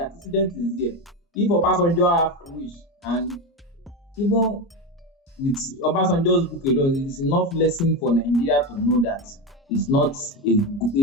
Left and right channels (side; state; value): both; normal; correlation 0.16